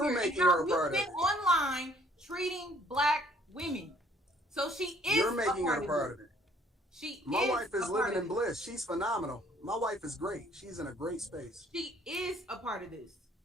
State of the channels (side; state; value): both; normal; correlation 0.61